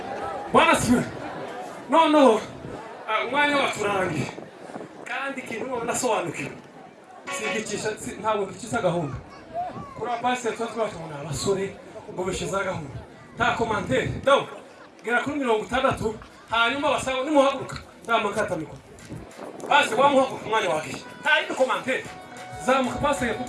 Bwana siwe. No. Umwanya waturangiye. Kandi kintu nasobanukiwe. Sigicisha ntabwo gicisha gahunda. Kura pastor twatwatubona abasore ngo bishiza gahunda. Ta commentaire. Donc, gera kuri 60 hanyuma basaba nimuhaguruka. Ndamakata miko. Basi wamuhaguruka umwanya wake. Ta indi commentaire. Zamuka pastor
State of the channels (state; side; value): identical; both; correlation 1.00